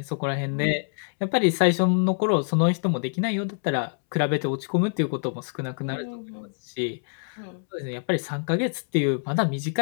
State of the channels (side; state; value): right; silent; 61 dB below the other